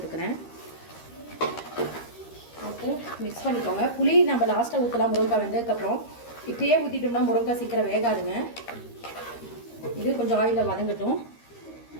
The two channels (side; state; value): right; late; 13 ms